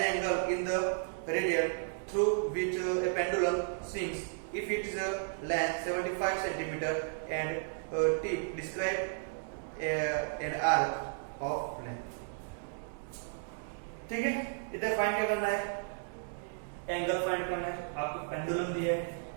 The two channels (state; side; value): silent; left; digital silence